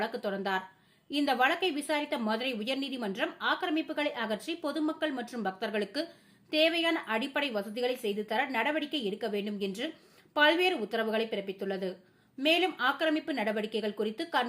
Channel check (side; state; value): both; identical; correlation 1.00